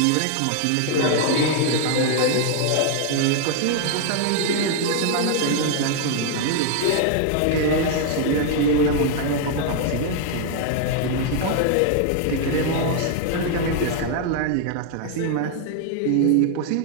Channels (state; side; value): different; both; correlation 0.00